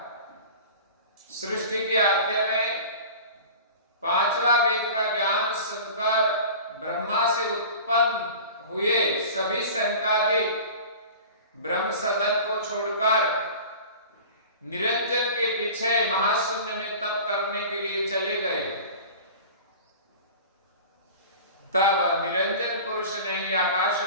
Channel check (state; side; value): inverted; both; correlation -0.37